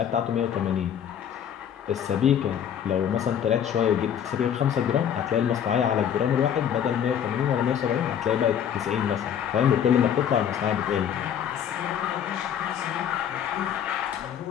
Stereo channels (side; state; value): right; quieter; 9.0 dB